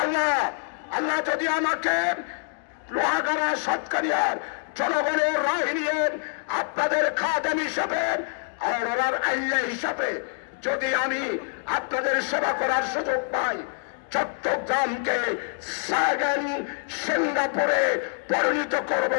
আল্লাহ যদি আমাকে লোহাগাড়া সাতকানিয়ার জনগণের রায় নিয়ে আপনাদের খাদেম হিসাবে আর ওনার আইয়া হিসাবে যদি আমি আপনাদের সেবা করার সুযোগ পাই, চট্টগ্রামকে সেকেন্ড সিঙ্গাপুরে পরিণত করব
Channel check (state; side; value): silent; right; digital silence